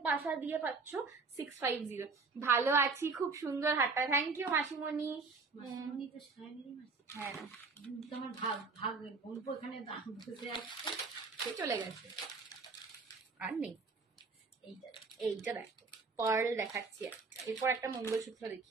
পাশা দিয়ে পাচ্ছ 650। ভালো আছি, খুব সুন্দর হাতটা, থ্যাংক ইউ মাসিমণি। হ্যাঁ তোমার ভাগ ভাগ বলবো এখানে বসে আসছে, সে চলে গেছে আর নেই। এইটা দেখো, পার্ল দেখাচ্ছি একটা, এরপর একটা মঙ্গলসূত্র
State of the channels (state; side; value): quieter; left; 4.3 dB